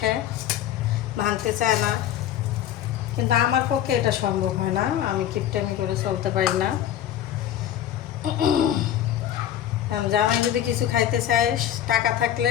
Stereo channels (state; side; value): quieter; right; 11.2 dB